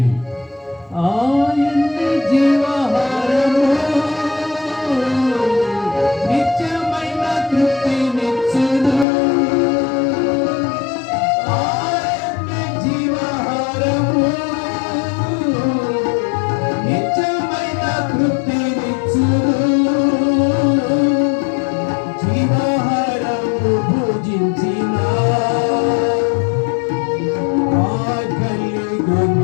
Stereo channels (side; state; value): right; drops out; at 9.1 s